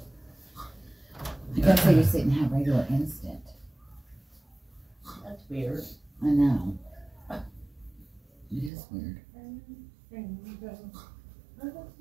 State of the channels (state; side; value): drops out; left; at 8.7 s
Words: I guess they just didn't have regular instant. That's weird. I know. It is weird.